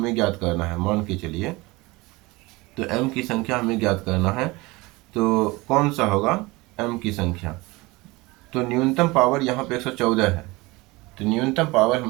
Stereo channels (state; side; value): quieter; left; 22.6 dB